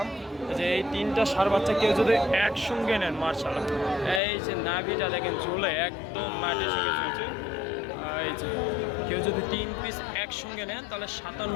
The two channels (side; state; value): right; drops out; at 4.2 s